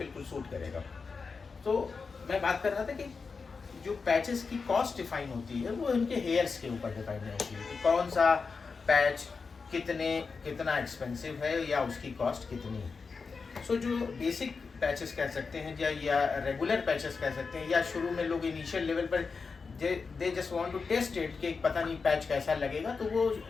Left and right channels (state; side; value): quieter; right; 4.9 dB